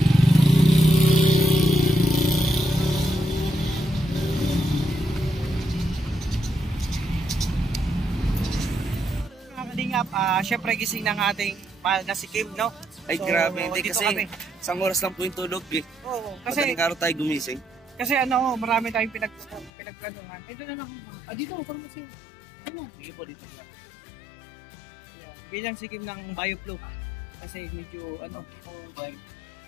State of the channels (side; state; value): right; drops out; at 19.7 s